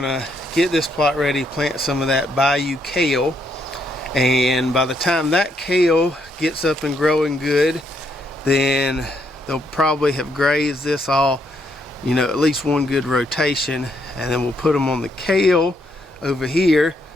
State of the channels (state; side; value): normal; both; correlation 0.74